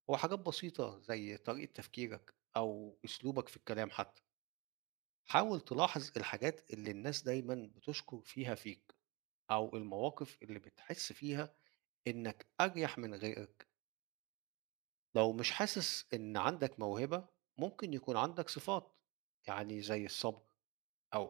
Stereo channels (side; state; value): left; quieter; 25.6 dB